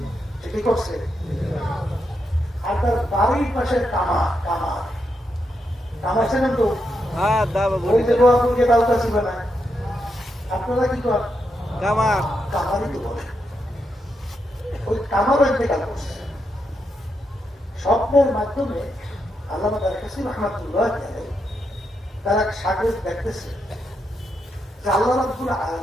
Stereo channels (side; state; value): both; normal; correlation 0.83